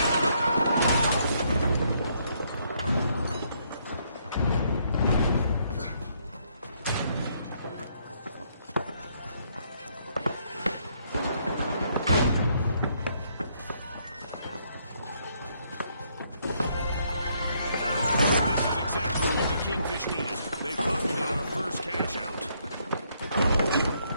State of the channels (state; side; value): inverted; both; correlation -0.71